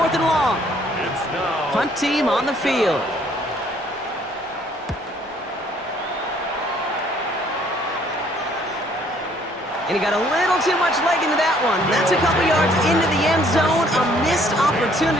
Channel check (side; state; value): both; normal; correlation 0.62